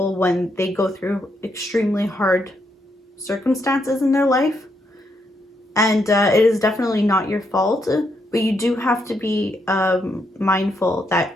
when they go through extremely hard circumstances in their life. And it is definitely not your fault, but you do have to be mindful that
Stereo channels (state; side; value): normal; both; correlation 0.78